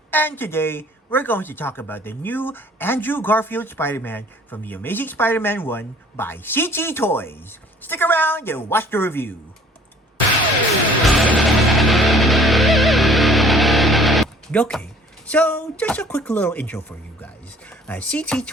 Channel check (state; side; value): normal; both; correlation 0.53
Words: and today we're going to talk about the new Andrew Garfield Spider-Man from the Amazing Spider-Man 1 by CT Toys. Stick around and watch the review. Okay, so just a quick little intro for you guys. CT